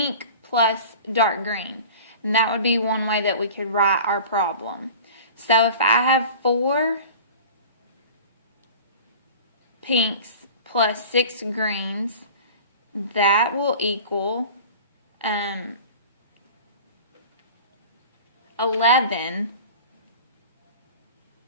plus dark green. And that would be one way that we could write our problem. So if I have 4 pinks plus 6 greens, that will equal 11.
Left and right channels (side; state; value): both; inverted; correlation -0.39